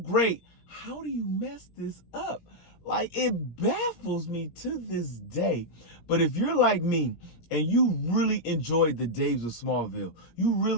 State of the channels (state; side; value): late; right; 17 ms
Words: How do you mess this up? Like, it baffles me to this day. But if you're like me and you really enjoyed the days of Smallville, you